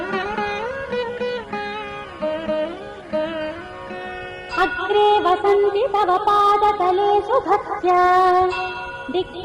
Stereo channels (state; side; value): identical; both; correlation 1.00